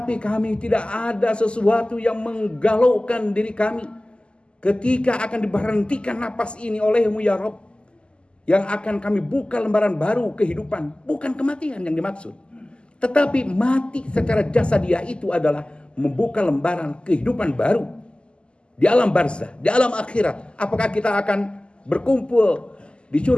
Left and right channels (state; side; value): late; right; 0.051 ms